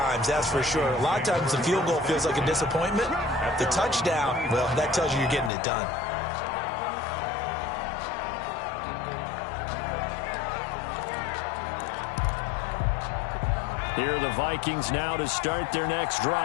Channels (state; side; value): drops out; right; at 5.5 s